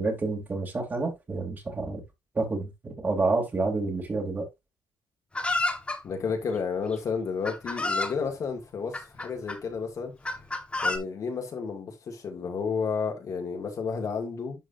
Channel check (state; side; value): normal; both; correlation 0.76